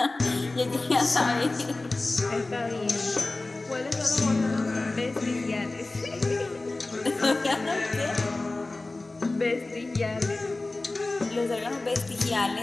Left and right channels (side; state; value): right; quieter; 3.1 dB